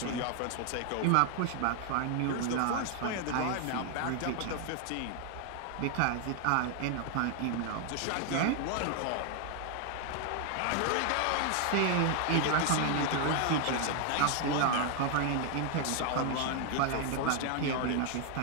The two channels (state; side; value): different; both; correlation 0.00